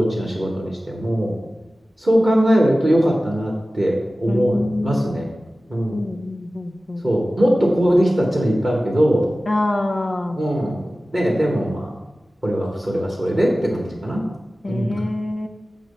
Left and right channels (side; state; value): both; normal; correlation 0.96